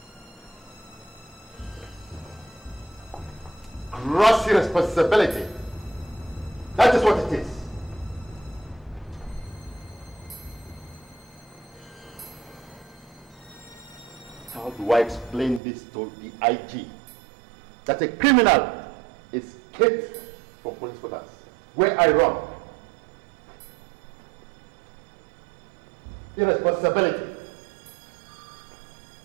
Gross irresponsibility. That is what it is. How do I explain this to the IG? That a criminal escaped from police quarters where I run. Irresponsibility.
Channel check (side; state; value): left; drops out; at 15.6 s